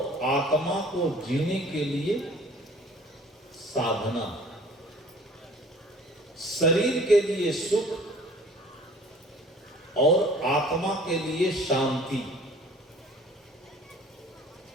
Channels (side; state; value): both; normal; correlation 0.50